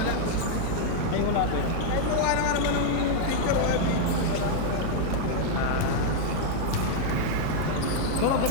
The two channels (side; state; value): both; different; correlation 0.00